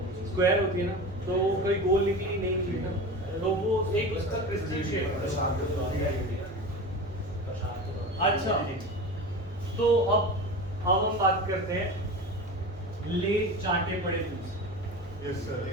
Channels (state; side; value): normal; both; correlation 0.30